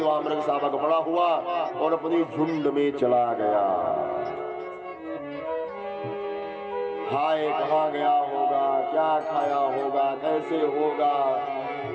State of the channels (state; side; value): identical; both; correlation 1.00